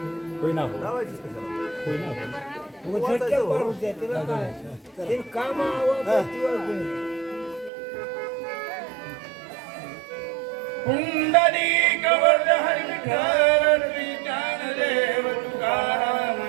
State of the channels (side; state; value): left; drops out; at 7.7 s